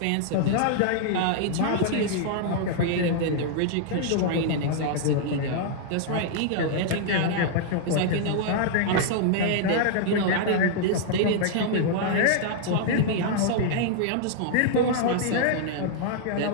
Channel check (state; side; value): different; both; correlation -0.01